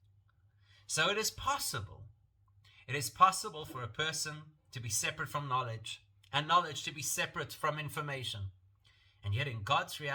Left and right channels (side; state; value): both; identical; correlation 1.00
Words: So it is possible. It is possible for a person to be separate from knowledge, and knowledge to be separate from information. And yet in God's